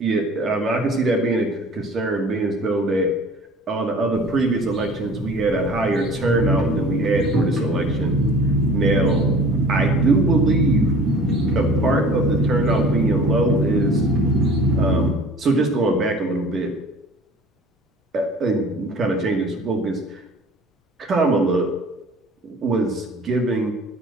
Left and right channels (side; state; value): both; normal; correlation 0.46